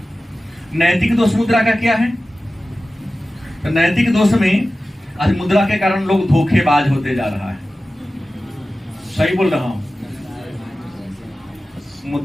नैतिक दोष मुद्रा का क्या है? तो नैतिक दोष में आज मुद्रा के कारण लोग धोखेबाज होते जा रहा है। सही बोल रहा हूं?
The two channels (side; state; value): both; normal; correlation 0.95